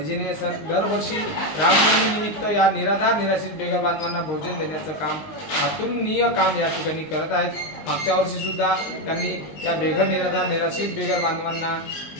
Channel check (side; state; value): right; late; 19 ms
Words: सर दरवर्षी रामनवमी निमित्त या निराधार निराश्रित बेघर बांधवांना भोजन देण्याचं काम अतुलनीय काम या ठिकाणी करत आहेत। मागच्या वर्षी सुद्धा त्यांनी या बेघर निराधार निराश्रित बेघर बांधवांना